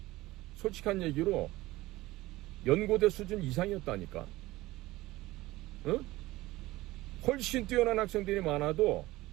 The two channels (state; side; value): quieter; left; 18.4 dB